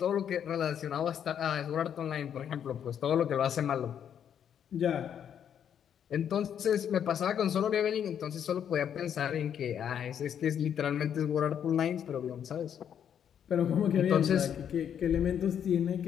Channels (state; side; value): quieter; right; 8.8 dB